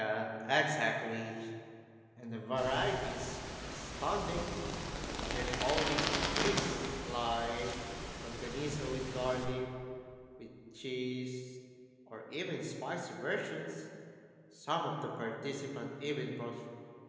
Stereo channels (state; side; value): identical; both; correlation 1.00